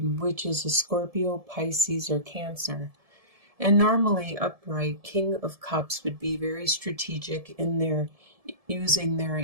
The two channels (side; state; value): left; late; 1.7 ms